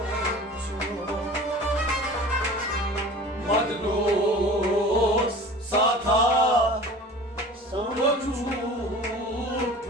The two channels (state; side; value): normal; both; correlation 0.40